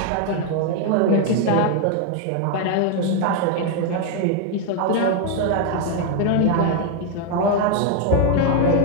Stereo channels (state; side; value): different; both; correlation 0.01